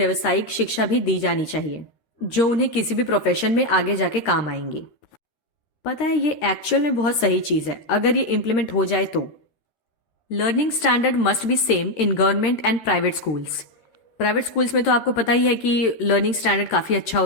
शिक्षा भी दी जानी चाहिए जो उन्हें किसी भी प्रोफेशन में आगे जाके काम आएंगी। पता है ये एक्चुअल में बहुत सही चीज है अगर ये इम्प्लीमेंट हो जाए तो। Learning standard must be same in government and private schools. Private schools में तो आपको पता ही है कि लर्निंग स्टैंडर्ड काफी अच्छा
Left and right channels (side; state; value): right; late; 13 ms